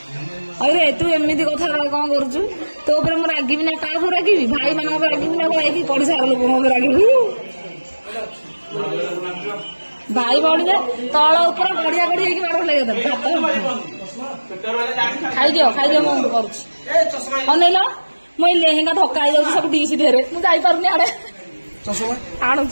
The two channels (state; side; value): inverted; both; correlation -1.00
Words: ଆରେ ତୁ ଏମିତି କଥା କଣ କରୁଛୁ? ତୋ ଉପରେ ମୁଁ ରାଗିବି ନା କାହା ଉପରେ ରାଗିବି? ଭାଇ ମାନଙ୍କ ଉପରେ ରାଗିବି ନା ଯାଇକି ପଡିଶା ଲୋକଙ୍କ ଉପରେ ରାଗିବି? ଭାଇ ଭଉଣୀ ତଳ ଉପରେ ଗଡିଆ ଗଡି ହେଇକି ମାଡ଼ ଲାଗିବ। ଖାଇଦିଅ ମୁଁ କରୁଛି। ଅନେଇଲ ମୁଁ ଏଇ ଲେହେଙ୍ଗା ଧକ୍କା ହେଇଯାଉଛି ସବୁ ଡିସି ଢେରେ ମୁଁ ଯାଇପାରୁନି ଆଡେ